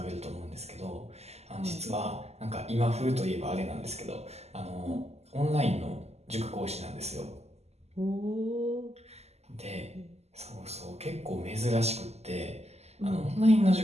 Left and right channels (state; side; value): late; left; 0.31 ms